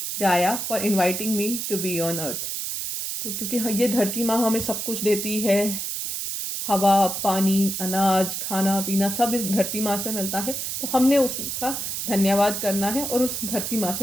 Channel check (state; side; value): noise; right; hiss, 3 dB below the sound